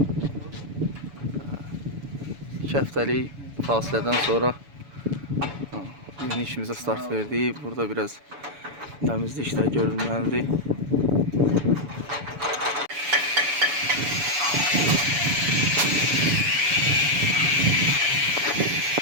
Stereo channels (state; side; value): late; left; 7.0 ms